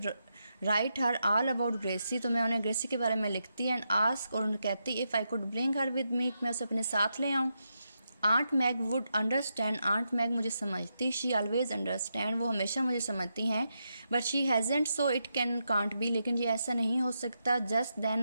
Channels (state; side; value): inverted; both; correlation -0.85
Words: write her all about Gracie तो मैं उन्हें ग्रेसी के बारे में लिखती एंड आस्क और उन्हें कहती if I could bring her with me मैं उसे अपने साथ ले आऊँ। Aunt Mag would understand aunt Mag मुझे समझती। शी ऑलवेज अंडरस्टैंड वो हमेशा मुझे समझती हैं। But she hasn't so it can't be लेकिन ये ऐसा नहीं हो सकता। Just